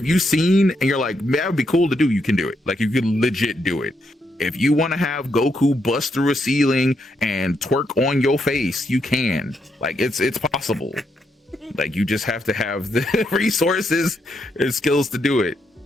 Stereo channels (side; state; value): both; normal; correlation 0.79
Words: you seen, and you're like, that would be cool to do, you can do it. Like, you could legit do it. If you want to have Goku bust through a ceiling and twerk on your face, you can. Like, it's possible. Like, you just have to have the resources and skills to do it.